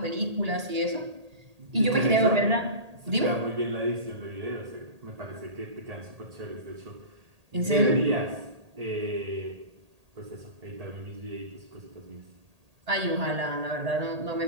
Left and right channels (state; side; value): late; left; 1.8 ms